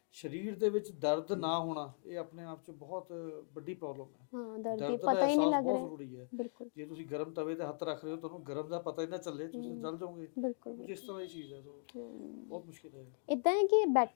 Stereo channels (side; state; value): right; silent; digital silence